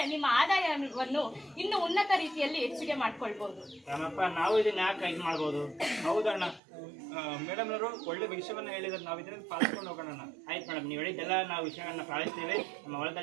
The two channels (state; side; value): drops out; left; at 6.6 s